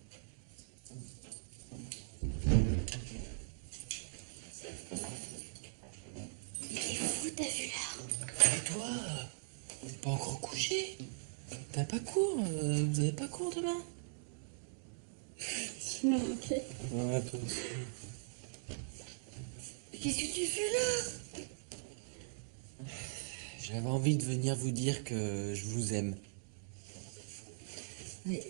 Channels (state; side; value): silent; left; digital silence